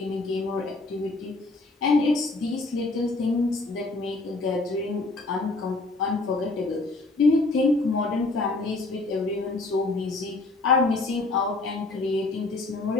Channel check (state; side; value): quieter; right; 3.2 dB